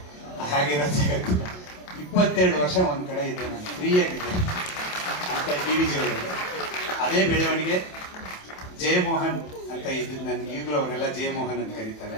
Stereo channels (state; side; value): late; right; 27 ms